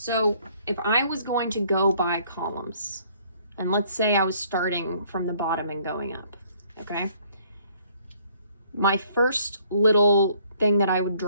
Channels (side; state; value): both; inverted; correlation -0.62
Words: if I was going to go by columns, and let's say I was starting from the bottom and going up, okay? My first little thing that I would